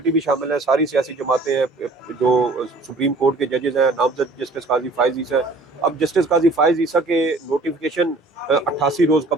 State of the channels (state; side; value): quieter; left; 3.1 dB